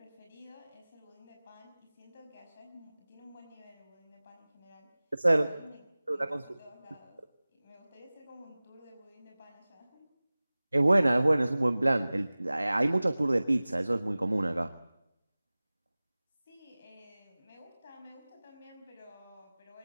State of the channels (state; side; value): inverted; both; correlation -0.99